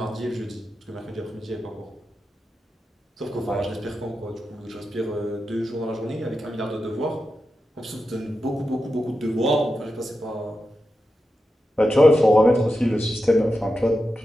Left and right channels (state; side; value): normal; both; correlation 0.90